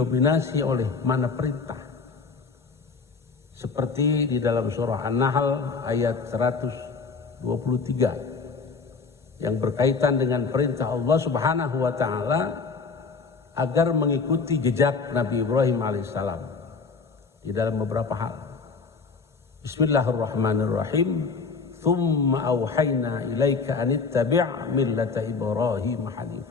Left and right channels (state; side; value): quieter; right; 4.8 dB